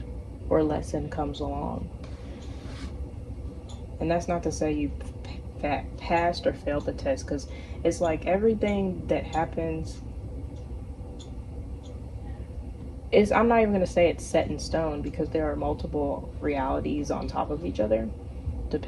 or lesson comes along. And that's not to say you passed or failed the test, because it's like everything that happens is, I'm not even going to say it's set in stone, because there are multiple realities on top of each other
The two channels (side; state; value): both; identical; correlation 1.00